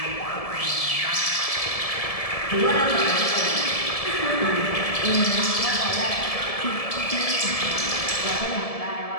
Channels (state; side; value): late; right; 1.7 ms